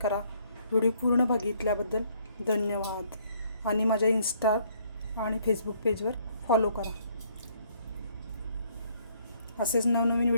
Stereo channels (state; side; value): inverted; both; correlation -0.65